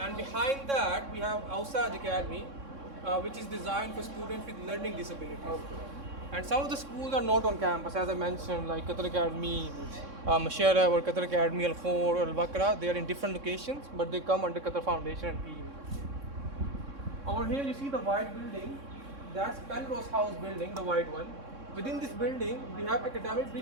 behind that, we have Ausaj Academy, which is designed for students with learning disabilities. And some of the schools are not on campus, as I mentioned, like Qatar Academy, Mashara, or Qatar Academy Al Khor or Al Bakra. They are in different locations, but they come under Qatar Foundation and PE. Over here, you see the white building. That's Penrose House building, the white one. Within this building, we have academic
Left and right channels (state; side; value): late; left; 3.6 ms